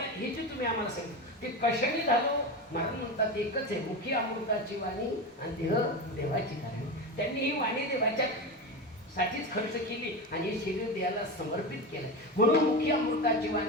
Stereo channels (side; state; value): both; normal; correlation 0.21